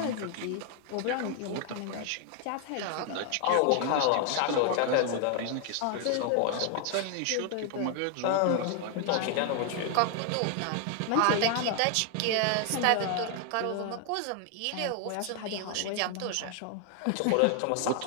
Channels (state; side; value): different; both; correlation 0.00